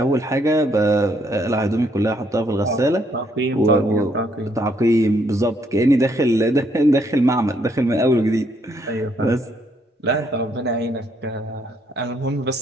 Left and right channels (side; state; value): both; normal; correlation 0.71